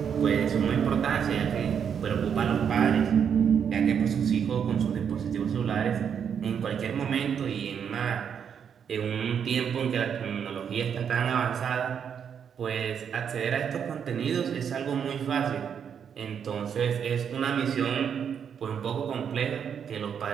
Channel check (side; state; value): left; quieter; 7.7 dB